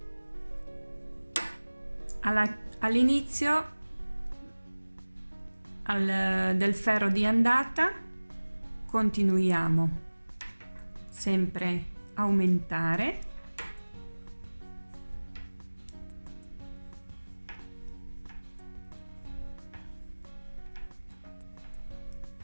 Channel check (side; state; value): both; inverted; correlation -1.00